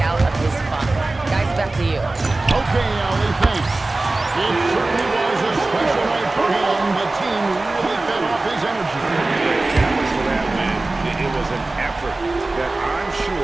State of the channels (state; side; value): quieter; left; 3.1 dB